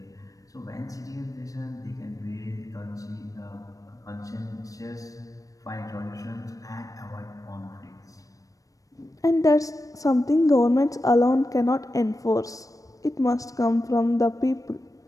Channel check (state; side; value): late; right; 0.16 ms